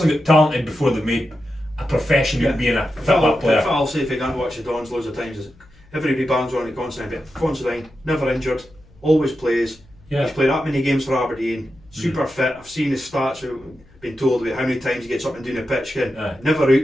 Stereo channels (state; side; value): noise; left; hum, 27 dB below the sound